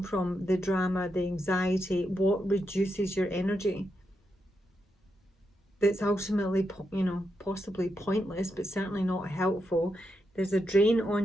from, the drama, the anxiety, what reduces your energy. That's ultimately, you know, possibly pointless, but certainly not helpful. There's a drain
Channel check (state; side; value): normal; both; correlation 0.84